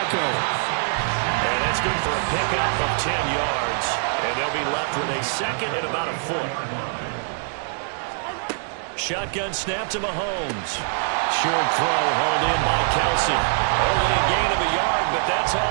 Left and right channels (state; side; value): silent; left; 56 dB below the other